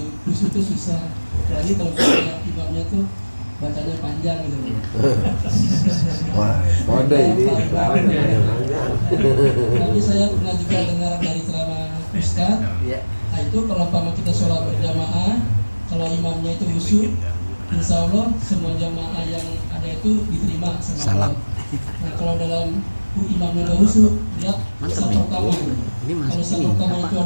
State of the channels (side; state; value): both; inverted; correlation -1.00